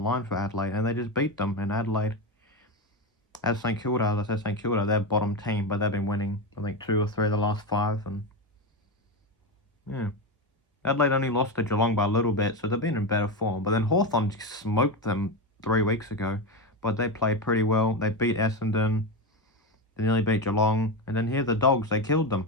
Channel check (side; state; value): both; normal; correlation 0.15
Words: for Adelaide, and they just beat them. And Adelaide, as St Kilda, as I said, St Kilda, they're bottom team, but they've been winning, I think, 2 or 3 of the last 5, and yeah. Adelaide only lost to Geelong by a little bit, so they've been in better form. But then Hawthorn smoked them 3 weeks ago, but they played pretty well. They beat Essendon, they nearly beat Geelong, and then here the Dogs, they killed them.